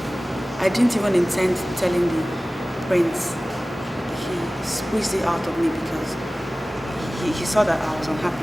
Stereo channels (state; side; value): normal; both; correlation 0.97